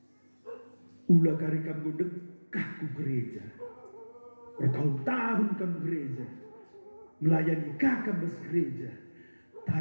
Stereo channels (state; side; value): inverted; both; correlation -1.00